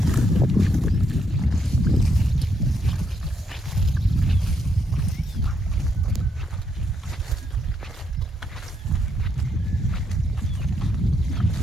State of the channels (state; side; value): normal; both; correlation 0.76